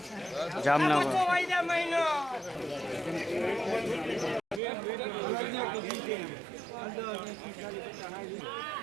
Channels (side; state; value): left; drops out; at 4.6 s